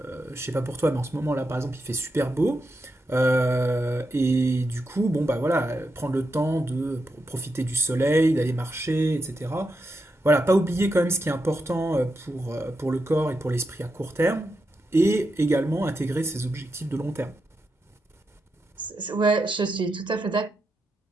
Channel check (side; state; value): both; normal; correlation 0.86